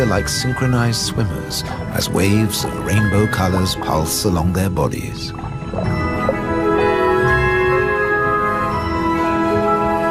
like synchronized swimmers as waves of rainbow colors pulse along their bodies.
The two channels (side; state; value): both; identical; correlation 1.00